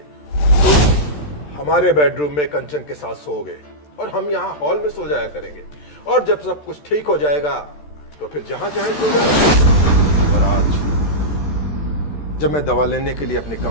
तुम हमारे बेडरूम में कंचन के साथ सोओगे और हम यहाँ हॉल में सो जाया करेंगे, और जब सब कुछ ठीक हो जाएगा तो फिर जहां चाहे सो जाना। और आज जब मैं दवा लेने के लिए अपने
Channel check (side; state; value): right; late; 13 ms